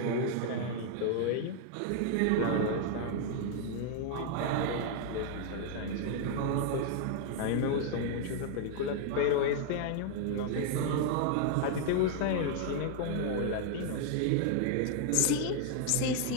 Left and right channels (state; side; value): different; both; correlation 0.00